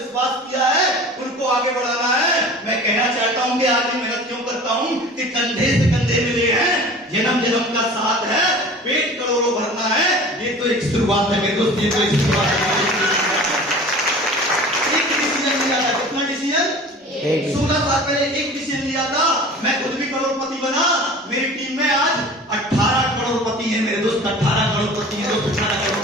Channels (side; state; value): both; normal; correlation 0.41